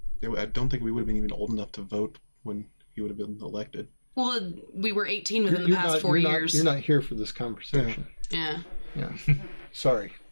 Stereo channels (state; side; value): inverted; both; correlation -1.00